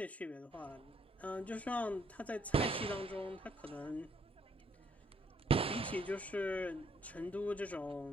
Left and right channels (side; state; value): both; normal; correlation 0.70